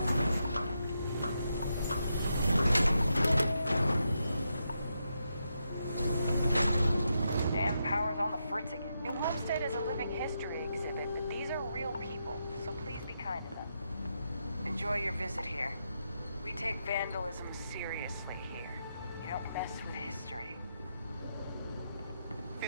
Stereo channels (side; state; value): both; inverted; correlation -0.83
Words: Damn power's on the fritz again. New Homestead is a living history exhibit, but these are real people, so please be kind to them. Enjoy your visit here. We take vandalism seriously here. You don't mess with history.